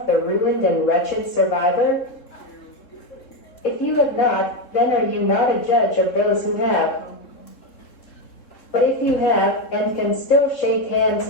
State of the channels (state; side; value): late; right; 3.7 ms